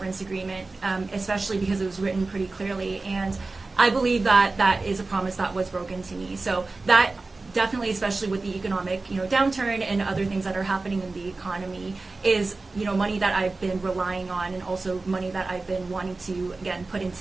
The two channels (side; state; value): left; quieter; 3.5 dB